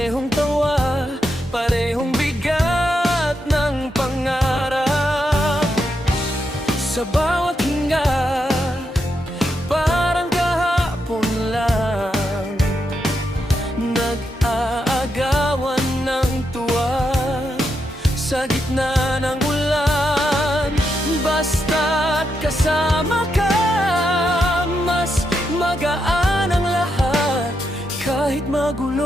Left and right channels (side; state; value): both; normal; correlation 0.83